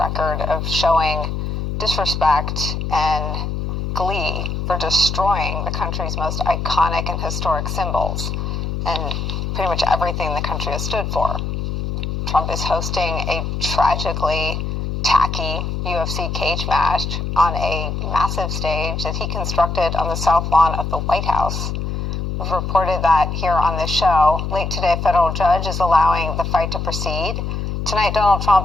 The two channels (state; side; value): noise; left; hum, 3 dB below the sound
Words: of showing disrespect and glee for destroying the country's most iconic and historic symbols and pretty much everything the country has stood for. Trump is hosting a tragically tacky UFC cage match on a massive stage that he constructed on the south lawn of the White House. We've reported that here on this show. Late today, a federal judge is allowing the fight to proceed. Tonight, Donald